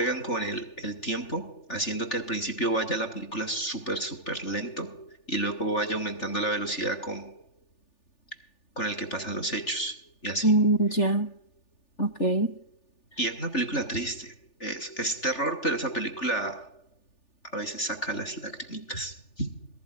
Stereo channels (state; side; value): late; right; 3.4 ms